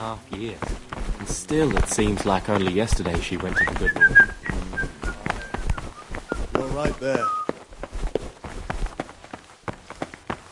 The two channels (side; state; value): both; identical; correlation 1.00